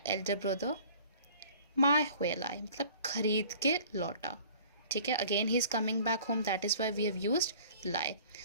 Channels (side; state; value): both; inverted; correlation -0.49